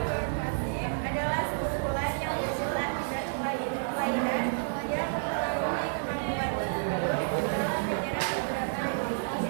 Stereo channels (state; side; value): silent; left; 58 dB below the other